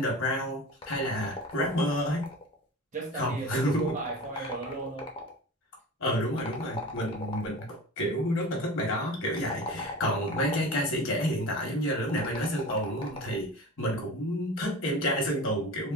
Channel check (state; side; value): normal; both; correlation 0.34